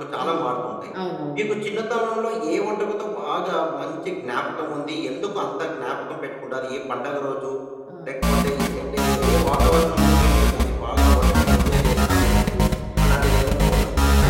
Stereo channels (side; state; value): both; identical; correlation 1.00